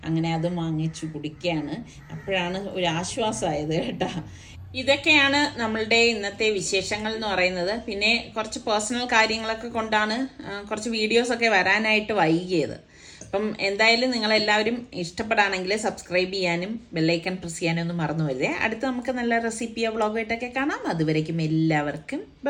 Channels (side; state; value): both; identical; correlation 1.00